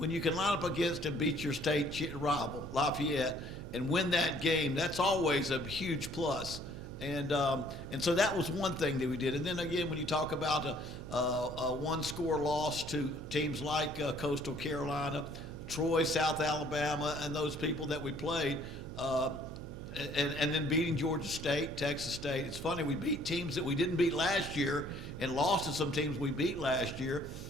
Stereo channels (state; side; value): noise; right; hum, 11 dB below the sound